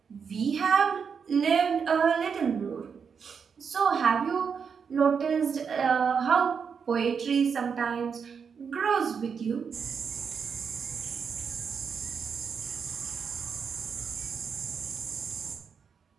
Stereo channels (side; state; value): left; quieter; 6.3 dB